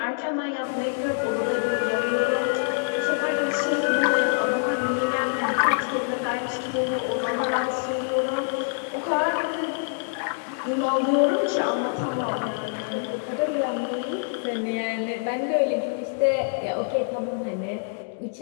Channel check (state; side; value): silent; right; digital silence